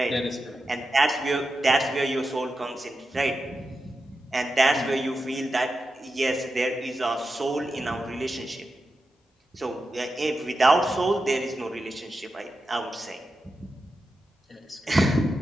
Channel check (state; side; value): normal; both; correlation 0.90